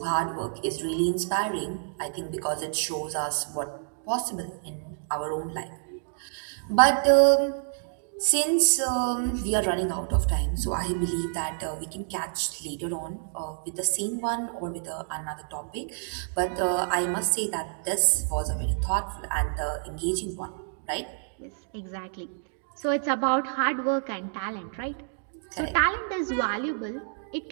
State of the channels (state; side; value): silent; left; digital silence